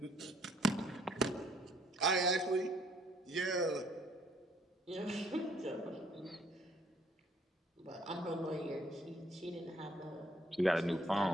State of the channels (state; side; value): normal; both; correlation 0.64